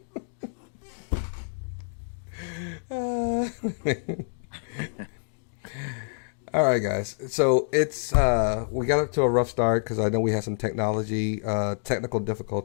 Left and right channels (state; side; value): silent; right; digital silence